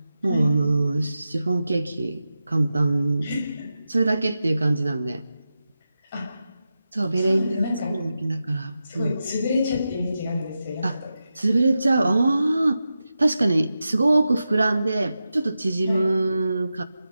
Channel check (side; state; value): both; inverted; correlation -0.91